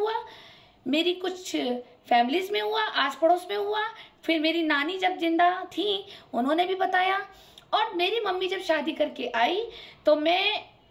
मेरी कुछ फैमिलीज में हुआ, आस पड़ोस में हुआ, फिर मेरी नानी जब जिंदा थी उन्होंने भी बताया, और मेरी मम्मी जब शादी करके आई तो मैं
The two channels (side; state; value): both; identical; correlation 1.00